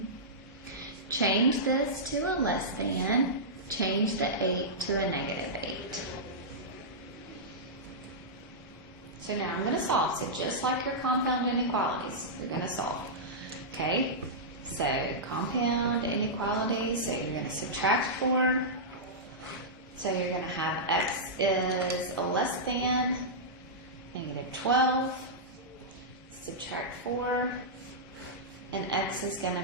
Change this to a less than. Change the 8 to a negative 8. So now I'm going to solve. So just like your compound inequalities, you're going to solve. Okay, so compound inequalities, so you're going to subtract 4. So you're going to have x is less than negative 12, subtract 4, and x is going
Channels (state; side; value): normal; both; correlation -0.12